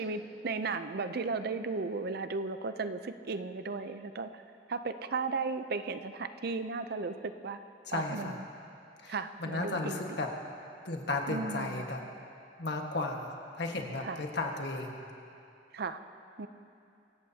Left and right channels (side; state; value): both; normal; correlation 0.04